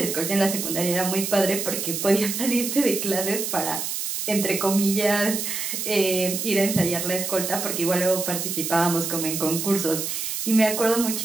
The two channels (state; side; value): noise; right; hiss, 3 dB below the sound